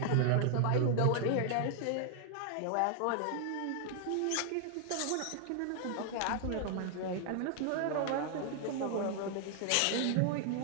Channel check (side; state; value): both; different; correlation 0.00